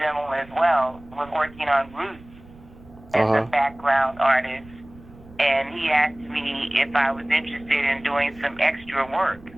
as well. Was working on Roots as a background artist, and he asked me if I was interested in doing some extra work,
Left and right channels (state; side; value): noise; right; rumble, 22 dB below the sound